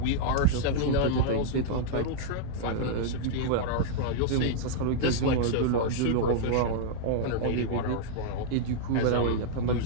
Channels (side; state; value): both; different; correlation -0.02